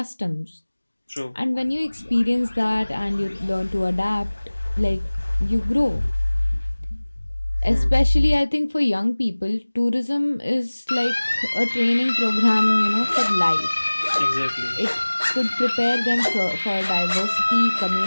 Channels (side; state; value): both; inverted; correlation -1.00